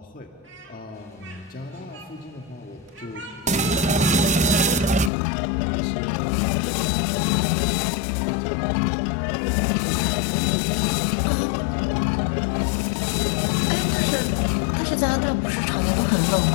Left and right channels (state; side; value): drops out; right; at 5.1 s